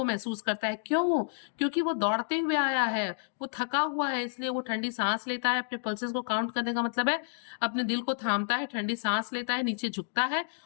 महसूस करता है। क्यों? क्योंकि वो दौड़ते हुए आया है, वो थका हुआ है, इसलिए वो ठंडी सांस लेता है। अपने पल्सेस को काउंट करने का मतलब है अपने दिल को थामता है, ठंडी सांस लेता है, नीचे झुकता है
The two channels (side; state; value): right; silent; digital silence